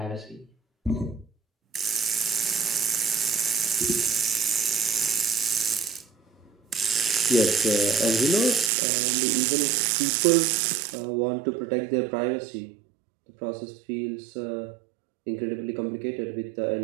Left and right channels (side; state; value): left; drops out; at 8.7 s